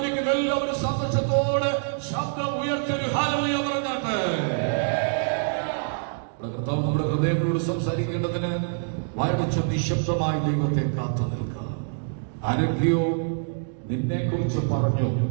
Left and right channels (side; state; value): left; silent; digital silence